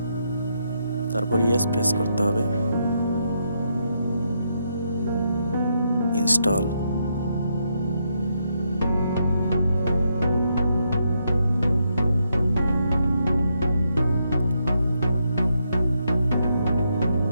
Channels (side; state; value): both; inverted; correlation -0.79